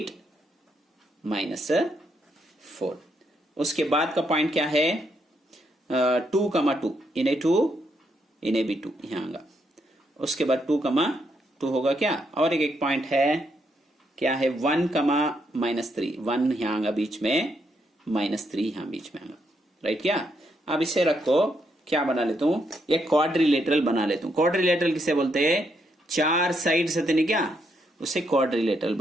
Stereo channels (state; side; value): normal; both; correlation 0.77